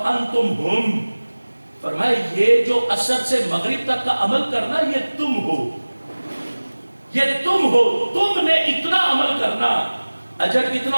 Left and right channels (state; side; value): inverted; both; correlation -1.00